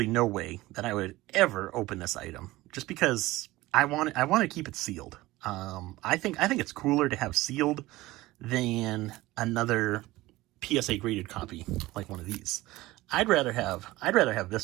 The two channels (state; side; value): quieter; left; 18.5 dB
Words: no way that I would ever open this item, just because I want to keep it sealed. I think it's cooler to have sealed than another PSA graded copy like one of these. I'd rather have